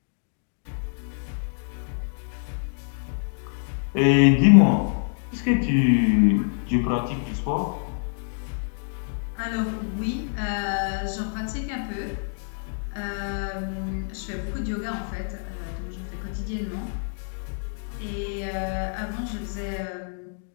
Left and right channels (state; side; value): silent; right; digital silence